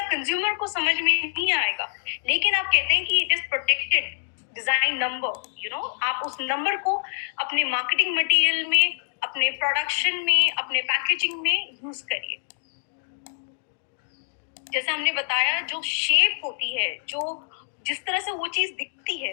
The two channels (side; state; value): right; silent; digital silence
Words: कंज्यूमर को समझ में नहीं आएगा। लेकिन आप कहते हैं कि it is protected design number, आप उस नंबर को अपने मार्केटिंग मटेरियल में, अपने प्रोडक्शन में, अपने पैकेजिंग में यूज करिए। जैसे हमने बताया, जो शेप होती है, जो जिस तरह से वो चीज दिखती है,